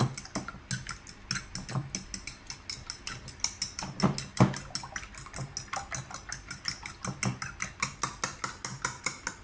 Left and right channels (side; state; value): both; identical; correlation 1.00